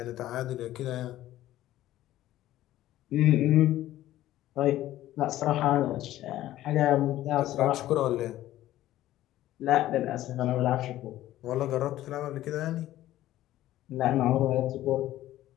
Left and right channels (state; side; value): quieter; right; 14.3 dB